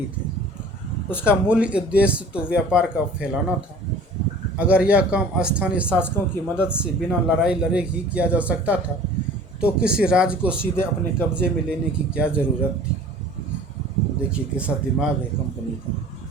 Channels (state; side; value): normal; both; correlation 0.46